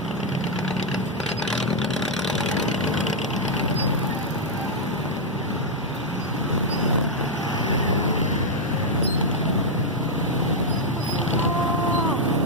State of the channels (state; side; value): normal; both; correlation -0.02